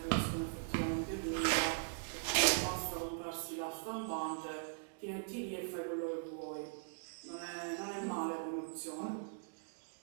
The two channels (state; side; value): silent; left; digital silence